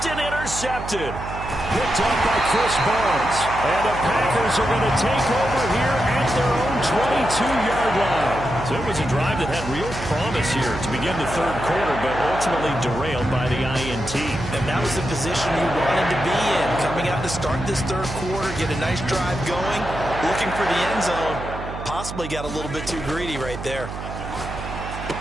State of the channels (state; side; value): noise; right; hum, 9 dB below the sound